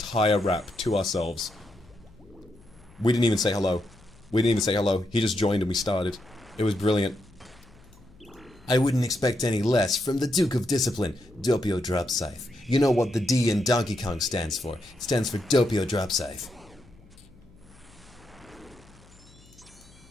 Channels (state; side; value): noise; left; hum, 25 dB below the sound